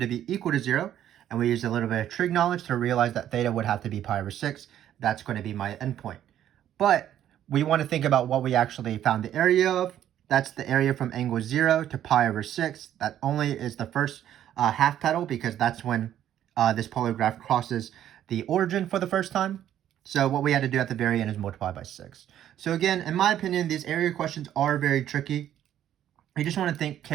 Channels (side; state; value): left; quieter; 11.1 dB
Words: be equal to 0. And we used a little bit of trig knowledge to realize that theta would have to be pi over 6. That's going to be my endpoint. But we want to think about what we actually found the area of. That's the area from angle 0 to pi over 6. That only is the first half petal, because that's when this polar graph crosses the origin for the first time. So what we had to do at the very end is multiply by 6. So again, in my opinion, these area questions are very tricky. You just want to think